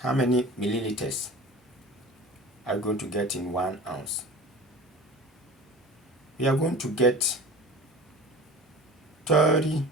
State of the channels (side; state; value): both; normal; correlation 0.37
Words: many milliliters are we going to get in 1 ounce? We are going to get 30